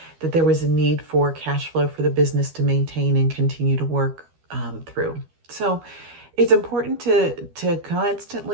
that there was a need for cash flow for the business to maintain and continue to work through. So it's important to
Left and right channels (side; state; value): left; late; 12 ms